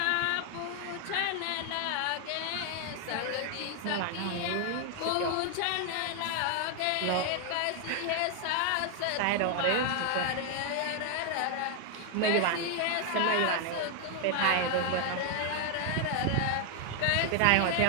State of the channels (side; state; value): both; different; correlation 0.00